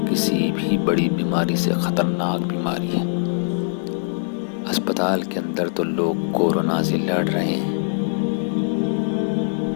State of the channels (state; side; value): silent; right; 64 dB below the other